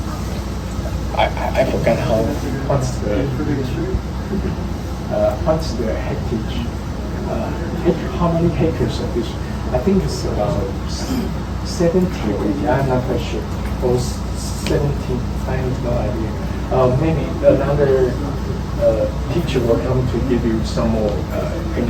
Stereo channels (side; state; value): both; identical; correlation 1.00